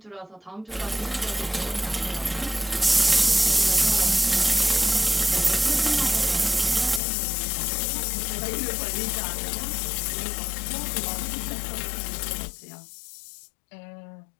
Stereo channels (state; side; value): drops out; right; at 7.0 s